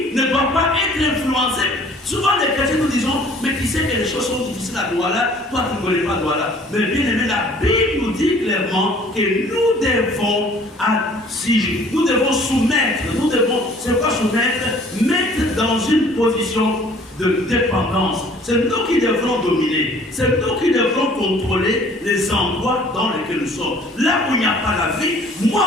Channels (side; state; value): both; normal; correlation 0.54